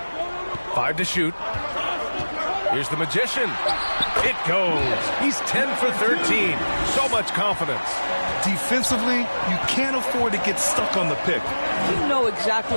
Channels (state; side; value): inverted; both; correlation -1.00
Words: 5 to shoot. Here's the Magician. It goes. He's 10 for 13. So much confidence. Defensively, you can't afford to get stuck on the pick. You know